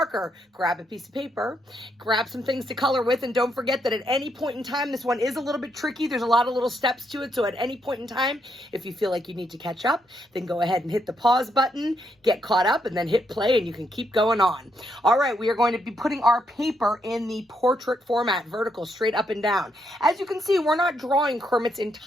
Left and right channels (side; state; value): both; normal; correlation 0.77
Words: grab a piece of paper, grab some things to color with, and don't forget that at any point in time, this one is a little bit tricky. There's a lot of little steps to it, so at any point in time, if you feel like you need to catch up, then go ahead and hit the pause button, get caught up, and then hit play, and you can keep going on. All right, we are going to be putting our paper in the portrait format, vertical, straight up and down. As you can see, we're not drawing Kermit's